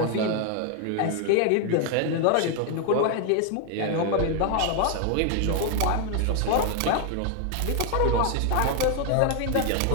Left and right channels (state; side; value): different; both; correlation 0.00